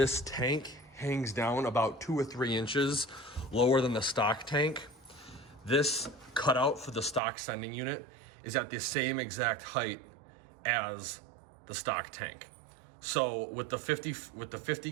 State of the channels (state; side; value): drops out; left; at 7.2 s